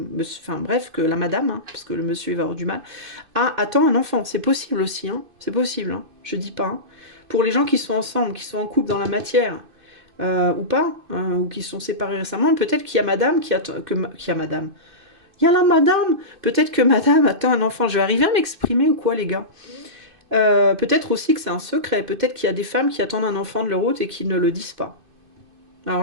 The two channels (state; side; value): late; left; 2.5 ms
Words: enfin, bref, que la madame, hein, parce que le monsieur, il va avoir du mal, attend un enfant. C'est possible aussi, hein. C'est possible, hein. Je dis pas. Hein. Pour les gens qui sont ensemble, qui sont en couple dans la matière, ou pas, hein, ou qui sont séparés récemment, peut-être qu'il y a madame qui attend, qu'il y a madame. Il y a la madame. Peut-être que madame attend un enfant. Je vais arriver à m'exprimer ou quoi, les gars? Peut-être aussi que c'est un secret. Peut-être qu'il y a des femmes qui attendent un enfant de leur autre et qui ne le disent pas.